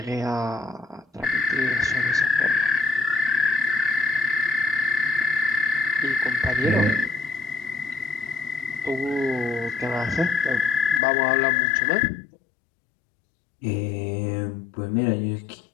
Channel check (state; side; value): drops out; right; at 11.0 s